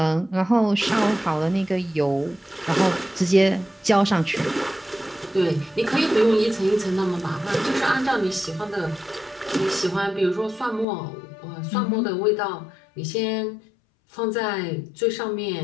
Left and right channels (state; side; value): drops out; right; at 10.9 s